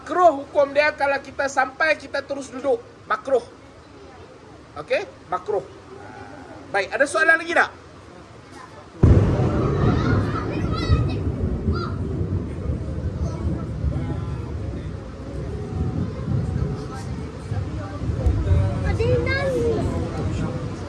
hukum dia kalau kita sampai kita terus duduk. Makruh. Okey? Makruh. Baik, ada soalan lagi tak?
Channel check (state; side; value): identical; both; correlation 1.00